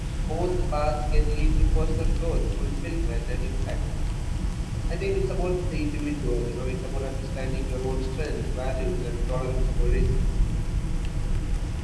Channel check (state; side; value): identical; both; correlation 1.00